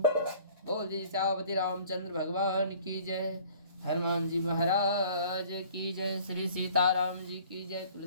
बोले श्यामति रामचंद्र भगवान की जय, हनुमान जी महाराज की जय, श्री सीताराम जी की जय,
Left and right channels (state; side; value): inverted; both; correlation -0.51